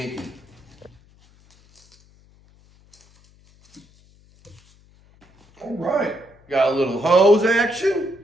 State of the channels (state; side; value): noise; left; hum, 30 dB below the sound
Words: All right, got a little hose action.